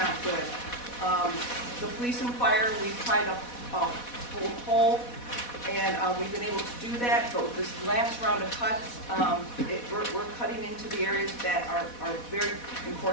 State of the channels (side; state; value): right; late; 4.1 ms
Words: good. The police and fire, we've tried to hold whole, and we've been able to do that, but with this last round of cuts, we're cutting into the areas that are very